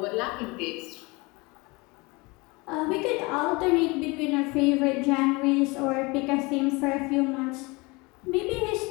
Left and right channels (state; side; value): quieter; right; 25.6 dB